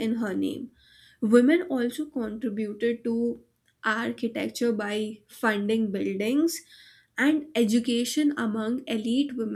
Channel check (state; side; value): identical; both; correlation 1.00